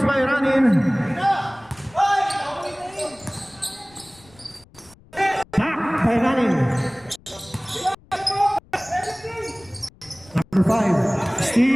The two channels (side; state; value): left; noise; rumble, 27 dB below the sound